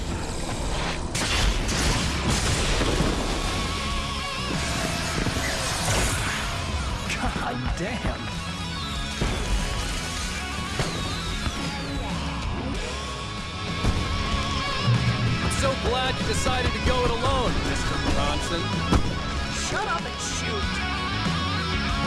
God damn. So glad you decided to go it alone, Mr. Bronson. Shut up and shoot!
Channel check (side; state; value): both; identical; correlation 1.00